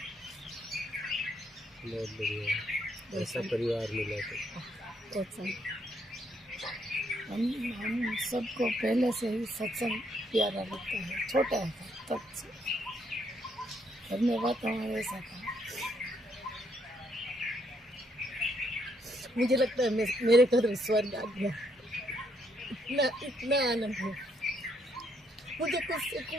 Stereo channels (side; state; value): both; normal; correlation 0.73